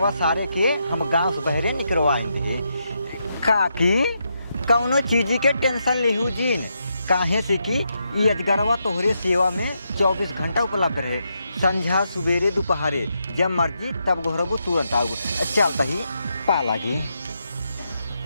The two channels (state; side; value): inverted; both; correlation -0.82